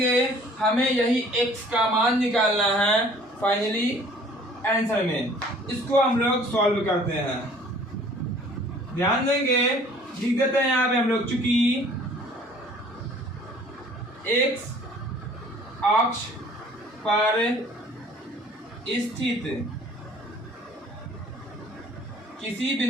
हमें यही x का मान निकालना है फाइनली आंसर में। इसको हम लोग सॉल्व करते हैं। ध्यान देंगे लिख देते हैं यहाँ पे हम लोग, चूंकि x अक्ष पर स्थित किसी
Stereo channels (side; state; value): both; normal; correlation 0.53